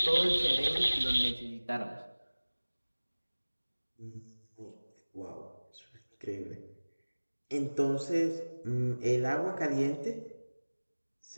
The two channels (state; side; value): inverted; both; correlation -1.00